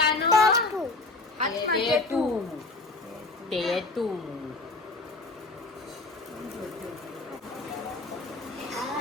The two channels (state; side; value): quieter; right; 3.4 dB